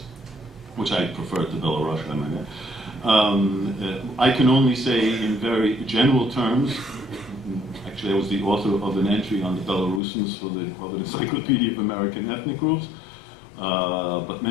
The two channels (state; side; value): drops out; right; at 10.0 s